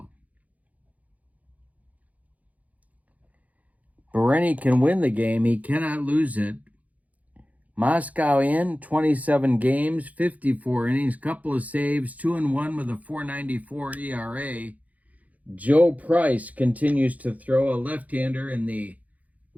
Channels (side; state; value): left; late; 0.074 ms